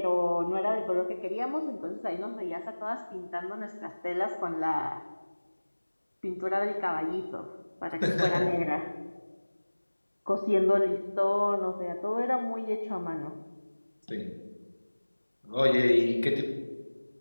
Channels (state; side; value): inverted; both; correlation -1.00